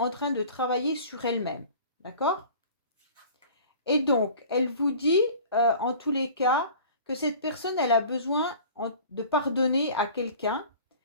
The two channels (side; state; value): both; inverted; correlation -0.44